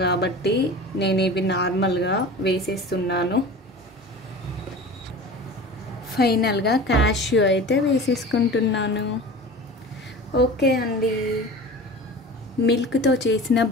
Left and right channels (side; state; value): both; normal; correlation 0.37